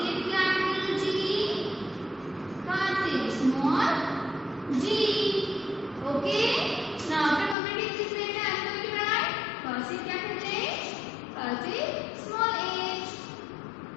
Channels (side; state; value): right; drops out; at 7.6 s